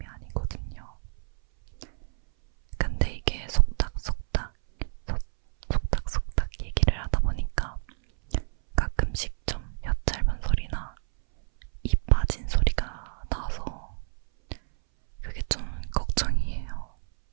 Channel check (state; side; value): silent; left; 59 dB below the other